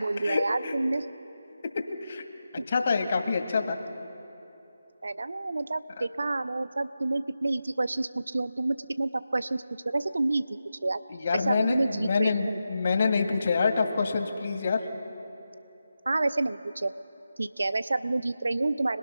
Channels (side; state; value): both; inverted; correlation -0.90